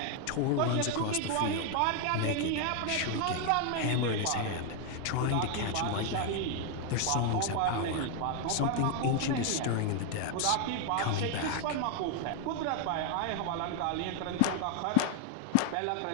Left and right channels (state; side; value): different; both; correlation 0.00